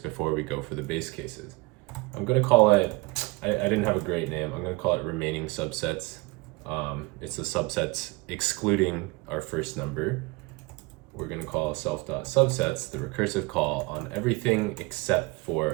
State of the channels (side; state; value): left; quieter; 24.4 dB